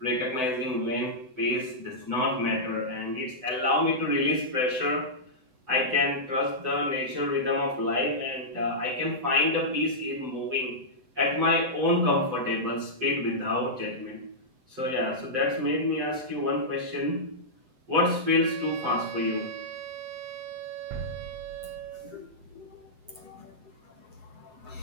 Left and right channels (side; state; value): left; late; 7.9 ms